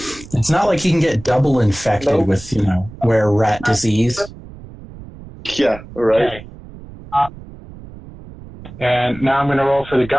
It's not like he can get double infected Nope. with, were rat disease. Yeah, right. Okay. And now I'm going to roll for the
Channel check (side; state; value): right; noise; rumble, 17 dB below the sound